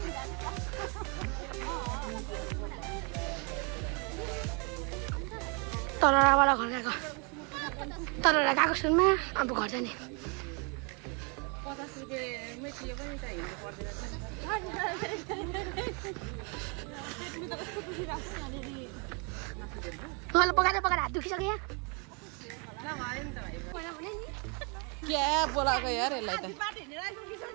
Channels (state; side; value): quieter; left; 34.0 dB